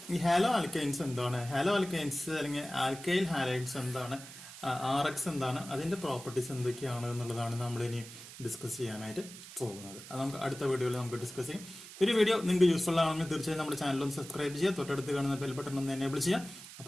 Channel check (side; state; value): right; noise; hiss, 15 dB below the sound